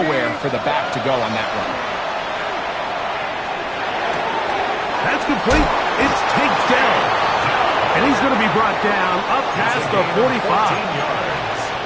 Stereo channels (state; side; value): identical; both; correlation 1.00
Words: for the back to go on that run. That's complete. It's taped down. And he's going to be brought down up past the 45.